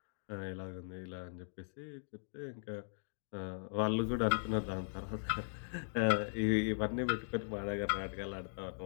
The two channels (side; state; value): right; silent; digital silence